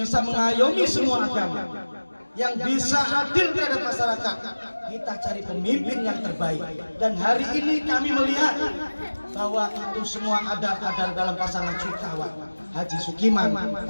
mengayomi semua agama, yang bisa adil terhadap masyarakat, kita cari pemimpin yang terbaik. Dan hari ini kami melihat bahwa itu semua ada dalam pasangan Sukawa, Haji Sukiman,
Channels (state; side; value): inverted; both; correlation -1.00